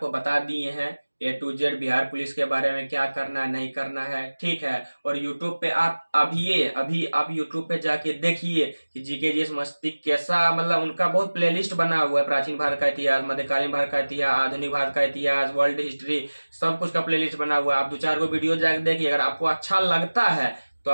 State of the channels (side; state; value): both; inverted; correlation -1.00